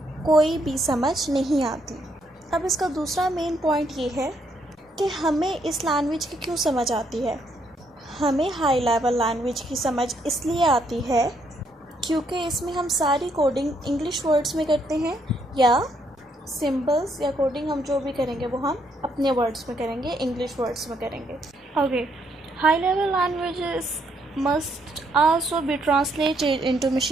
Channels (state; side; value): normal; both; correlation 0.73